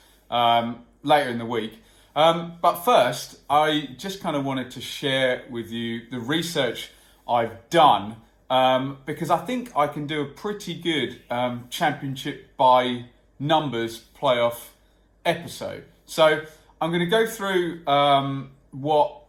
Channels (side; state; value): both; identical; correlation 1.00